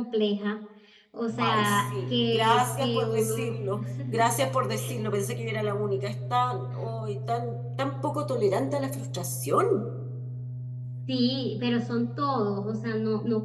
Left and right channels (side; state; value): both; identical; correlation 1.00